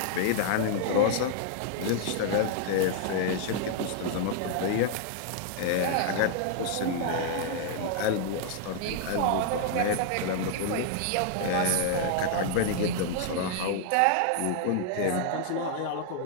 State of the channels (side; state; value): both; different; correlation -0.01